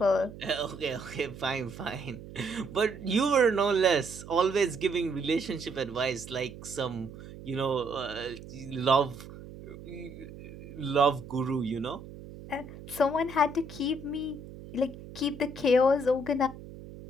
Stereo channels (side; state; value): right; noise; hum, 15 dB below the sound